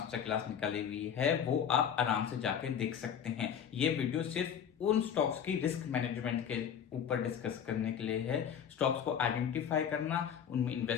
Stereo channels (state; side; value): quieter; right; 8.3 dB